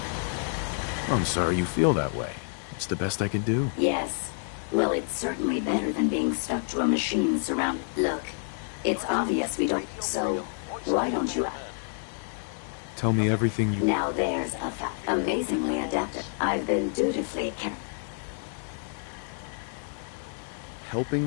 I'm sorry you feel that way. It's the best I can do. Yes. Well, it's certainly better than being stuck to a machine surrounded. Look, it's obvious we don't. So, why don't you? Tell me everything you... Now there's a amazingly adapted. I've been dutifully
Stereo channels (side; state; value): right; silent; digital silence